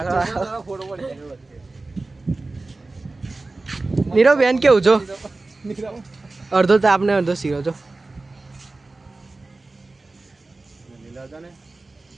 ફોટો પડી નીરવ બેન કેવું જો? નીરવ અડધો તાપ ને અડધો શીરો જો. લીલા હતા ને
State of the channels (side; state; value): left; quieter; 3.3 dB